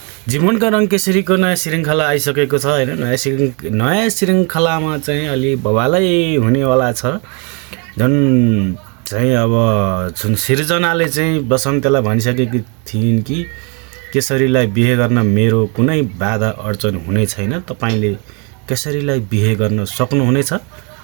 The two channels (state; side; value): quieter; left; 34.6 dB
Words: जीवनका रङ केसरीको नयाँ श्रृङ्खला आइसकेको छ हैन। नयाँ श्रृङ्खलामा चाहिँ अलि बवालै हुनेवाला छ। झन् चाहिँ अब जुन सिर्जनाले चाहिँ बसन्तलाई भनिसकेकी थिइन् कि केसरीलाई बिहे गर्न मेरो कुनै बाधा अडचन हुने छैन, तपाईले केसरीलाई बिहे गर्न सक्नुहुनेछ।